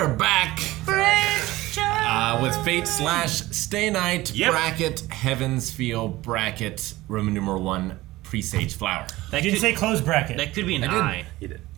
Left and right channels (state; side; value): quieter; left; 18.1 dB